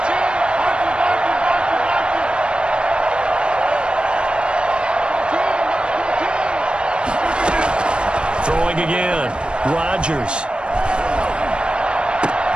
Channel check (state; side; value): late; left; 0.055 ms